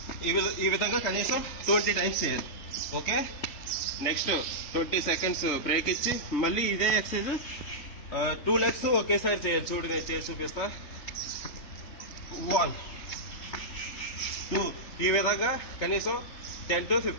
ఈ విధంగా కనీసం 20 times చేయాలి. ఓకే, నెక్స్ట్ 20 seconds బ్రేక్ ఇచ్చి మళ్ళీ ఇదే ఎక్సర్సైజ్ 2 legs ఒకేసారి చేయాలి. చూడు, నేను చేసి చూపిస్తా. 1 2 ఈ విధంగా కనీసం 10 to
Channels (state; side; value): late; right; 3.2 ms